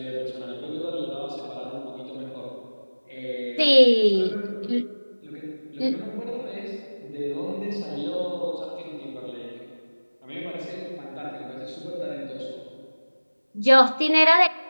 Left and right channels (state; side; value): inverted; both; correlation -1.00